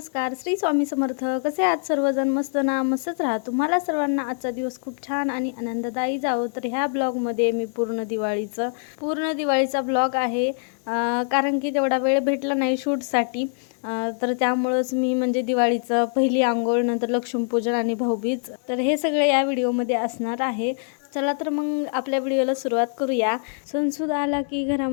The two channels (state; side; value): silent; right; digital silence